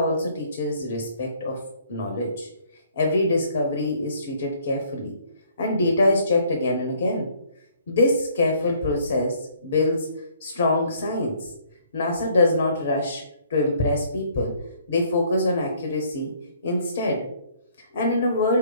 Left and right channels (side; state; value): both; inverted; correlation -0.62